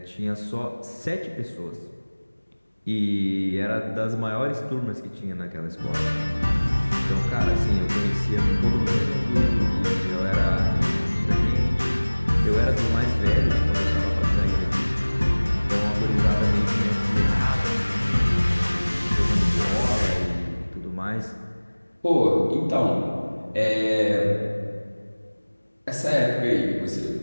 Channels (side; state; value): both; inverted; correlation -1.00